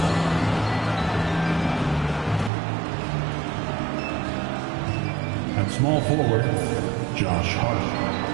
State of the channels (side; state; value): left; drops out; at 2.5 s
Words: At small forward, Josh Hart.